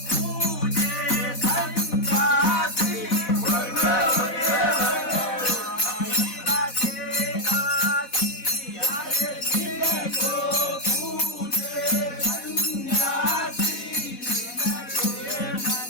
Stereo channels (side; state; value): right; late; 4.1 ms